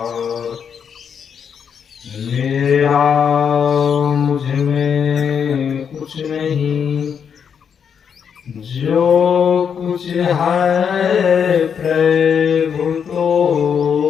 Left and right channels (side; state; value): right; quieter; 7.3 dB